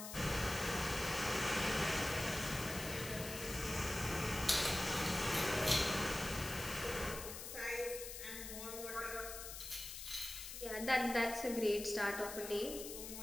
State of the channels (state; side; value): noise; left; hiss, 8 dB below the sound